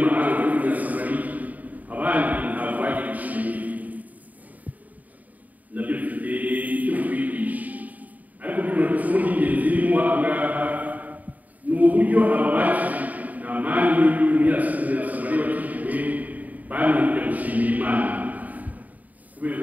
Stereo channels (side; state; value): left; late; 0.076 ms